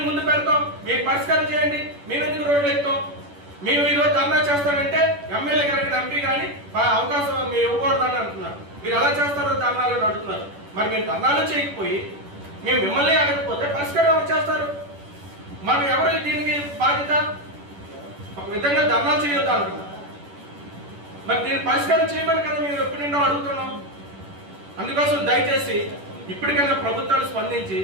ముందు పెడతాం, మీరు పరిష్కారం చేయండి. మేము ఎందుకు రోడ్లు ఎక్కుతాం? మేము ఈరోజు ధర్నా చేస్తానంటే ఎమ్మెల్యే గారికి, ఎంపీ కానీ అవకాశం మీరు ఇవ్వకూడదని అంటున్నారు. మీరు ఎలా చేస్తారో ధర్నాలు అడుగుతున్నారు. మరి మీరు ధర్నాలు చేయకపోయి మేము మిమ్మల్ని అడగకపోతే పరిష్కారం ఎవరు చేస్తారు? మనం ఎవరు దీనికి బాధ్యత? ఒక విధంగా ధర్నాలు చేయొద్దు అంటున్నారు. మరి దీన్ని పరిష్కారం చేయమని కదా మేము ఎప్పటి నుండో అడుగుతున్నాం. అందుకోసం దయచేసి ఇప్పటికైనా ప్రభుత్వాలు స్పందించి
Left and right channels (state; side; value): late; left; 10 ms